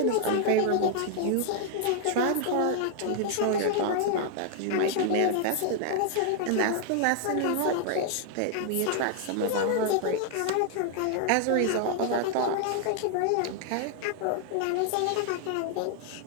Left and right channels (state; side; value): different; both; correlation 0.00